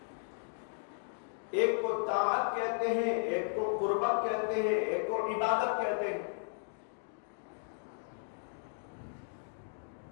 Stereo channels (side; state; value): right; silent; digital silence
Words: ایک کو طاعت کہتے ہیں، ایک کو قربت کہتے ہیں، ایک کو عبادت کہتے ہیں.